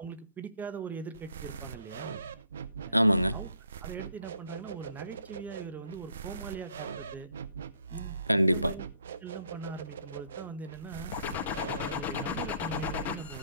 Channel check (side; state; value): both; inverted; correlation -0.64